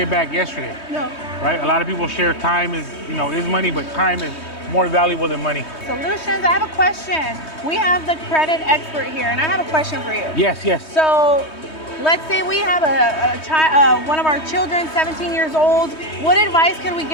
back yesterday, No. right? A lot of people share time is money, but time is more valuable than money. Solutions, I have a question. We have the credit expert here, and I have a question for you. Yes. So, let's say we have a child, one of our children, 17 years old. What advice can we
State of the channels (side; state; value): right; late; 3.2 ms